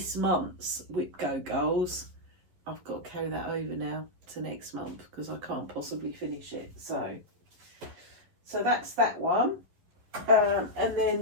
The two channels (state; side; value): late; left; 11 ms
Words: month's WIPGO goals. I've got to carry that over now to next month because I can't possibly finish it. So that's that one. And then